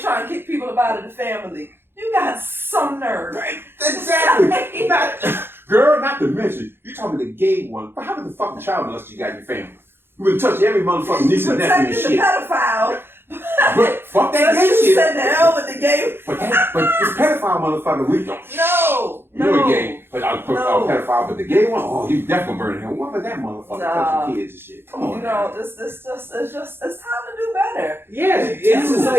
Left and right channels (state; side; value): late; left; 0.11 ms